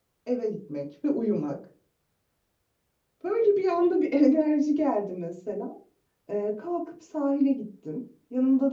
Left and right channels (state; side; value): identical; both; correlation 1.00